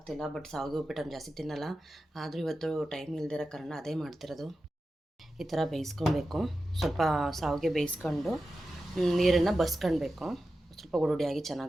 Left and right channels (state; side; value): normal; both; correlation 0.92